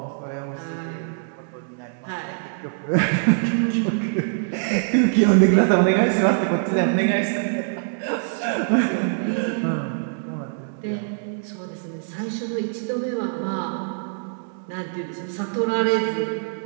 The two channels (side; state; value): left; silent; 63 dB below the other